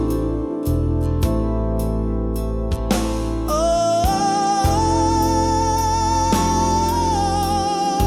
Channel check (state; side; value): identical; both; correlation 1.00